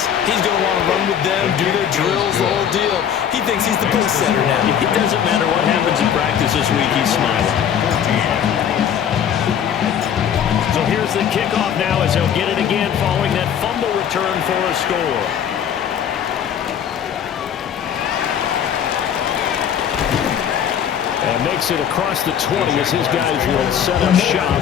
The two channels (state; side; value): quieter; right; 8.8 dB